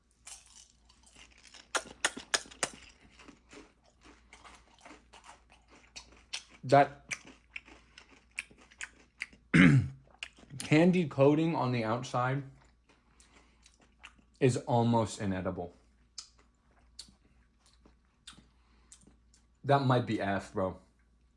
That candy coating on the outside is almost inedible. That might be F, bro.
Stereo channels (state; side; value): identical; both; correlation 1.00